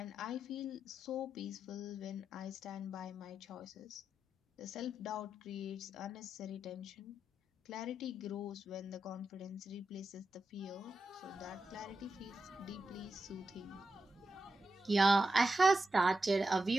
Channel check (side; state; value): both; normal; correlation 0.88